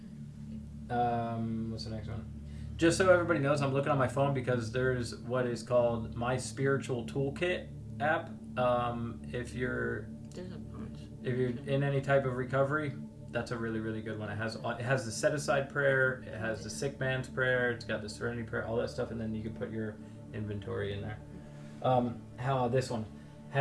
there. What's the next one? Just so everybody knows, I'm looking on my phone because there's what is called My Spiritual Toolkit app. If you're There's a bunch. If you're in any type of recovery, that's a really, really good one. It has the set aside prayer, it has the sick man's prayer, it's got the serenity prayer, all that stuff, and then you can put your inventory in there. This one?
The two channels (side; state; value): both; identical; correlation 1.00